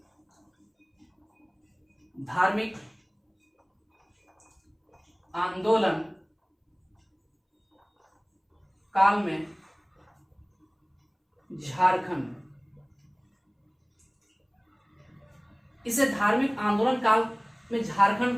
झारखंड, इसे धार्मिक आंदोलन काल में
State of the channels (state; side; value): identical; both; correlation 1.00